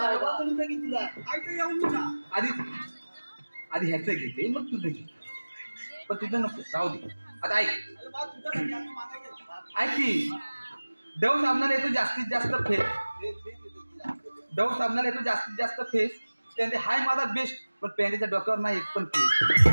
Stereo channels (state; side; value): inverted; both; correlation -1.00